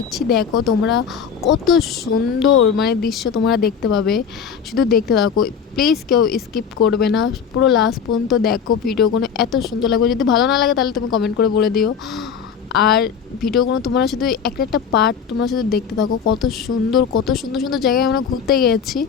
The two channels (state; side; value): quieter; right; 7.0 dB